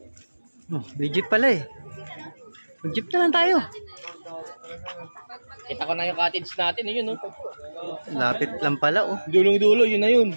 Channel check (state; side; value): inverted; both; correlation -1.00